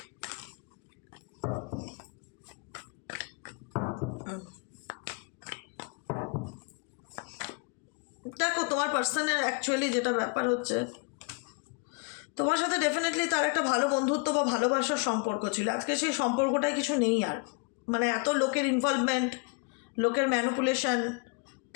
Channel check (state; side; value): quieter; right; 31.9 dB